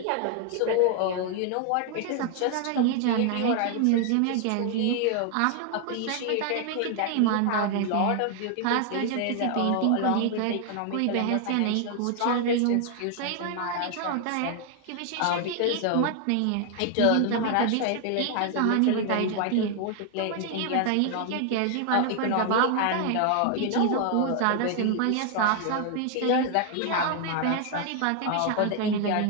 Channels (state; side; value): different; both; correlation 0.00